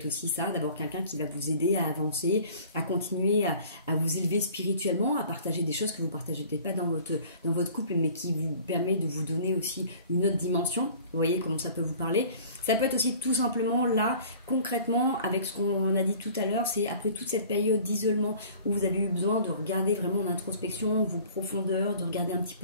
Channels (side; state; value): both; inverted; correlation -0.48